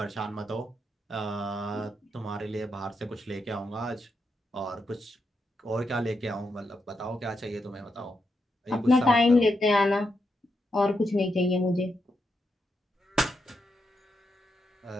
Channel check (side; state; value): both; normal; correlation 0.83